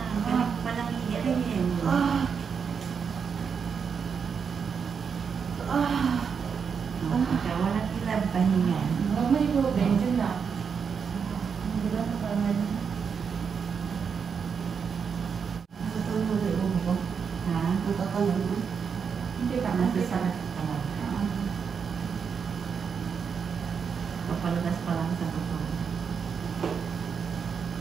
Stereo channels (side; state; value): left; quieter; 6.4 dB